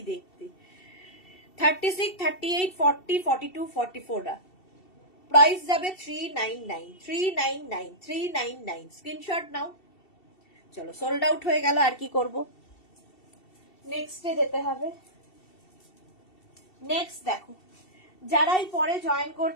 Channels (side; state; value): right; late; 2.7 ms